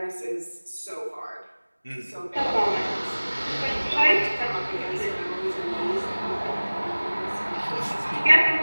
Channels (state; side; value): inverted; both; correlation -1.00